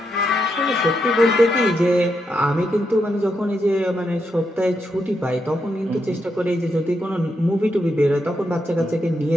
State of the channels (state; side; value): normal; both; correlation 0.82